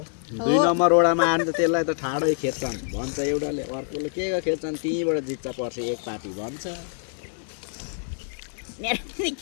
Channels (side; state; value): right; silent; digital silence